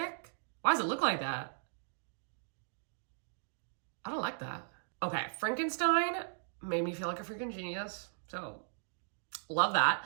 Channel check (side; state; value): left; silent; digital silence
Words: Why does it look like that? I don't like that. Okay, Frankenstein made me feel like a freaking genius. So, love